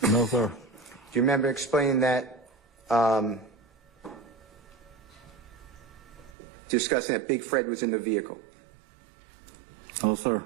No, sir. Do you remember explaining that, discussing that Big Fred was in the vehicle? No, sir.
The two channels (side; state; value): left; drops out; at 6.3 s